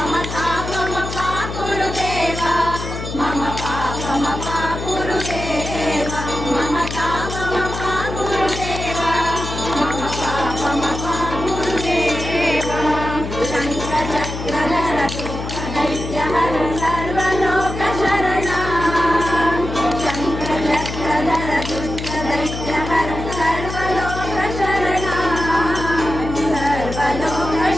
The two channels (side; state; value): left; noise; hum, 7 dB below the sound